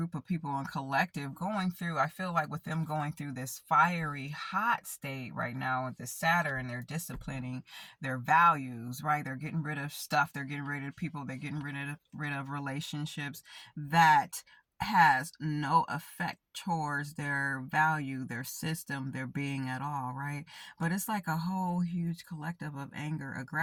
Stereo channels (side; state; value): both; identical; correlation 1.00